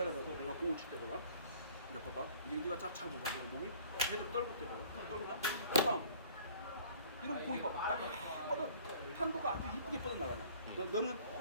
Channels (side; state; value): both; inverted; correlation -0.52